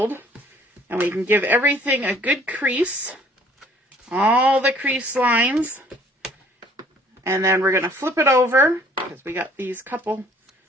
And we can give everything a good crease, all the crease lines. And then we're going to flip it over, because we got these couple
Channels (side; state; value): both; normal; correlation 0.57